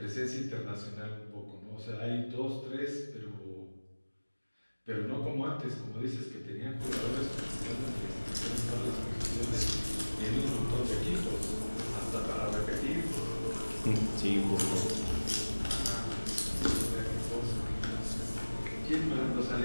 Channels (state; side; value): inverted; both; correlation -1.00